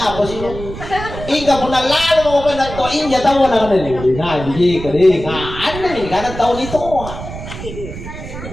sih lo? Ika pun lalo mo penatoin ya tahu na kanila. Nah, hindi ka rin. Ano ni kada tahu ditoa.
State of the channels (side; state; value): right; noise; rumble, 10 dB below the sound